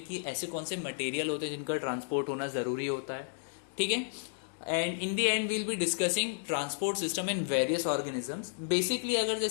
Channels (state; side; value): silent; right; digital silence